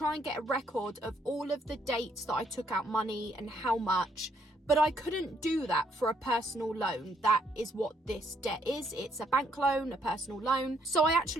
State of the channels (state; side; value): normal; both; correlation 0.70